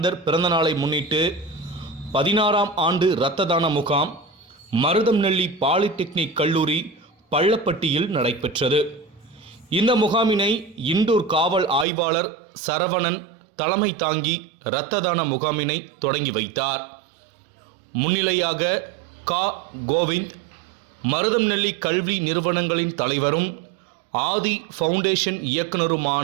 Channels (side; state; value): left; drops out; at 11.9 s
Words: பிறந்தநாளை முன்னிட்டு 16ஆம் ஆண்டு இரத்த தான முகாம் மருதம்நெல்லி பாலிடெக்னிக் கல்லூரி பள்ளப்பட்டியில் நடைபெற்றது. இந்த முகாமினை இண்டூர் காவல் ஆய்வாளர் சரவணன் தலைமை தாங்கி இரத்த தான முகாமினை தொடங்கி வைத்தார். முன்னிலையாக கோவிந்த், மருதம்நெல்லி கல்வி நிறுவனங்களின் தலைவரும் ஆதி ஃபவுண்டேஷன்